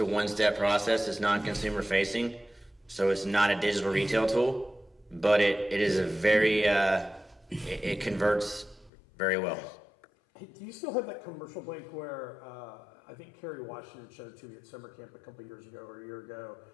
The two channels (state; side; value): drops out; right; at 8.9 s